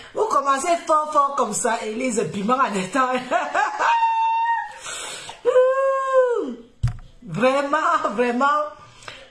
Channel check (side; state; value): both; identical; correlation 1.00